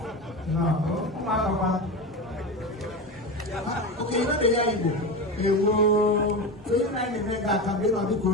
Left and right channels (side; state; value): both; normal; correlation 0.22